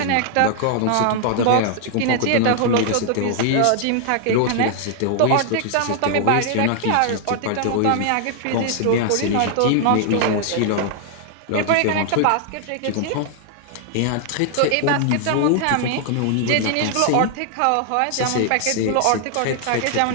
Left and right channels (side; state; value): both; different; correlation 0.00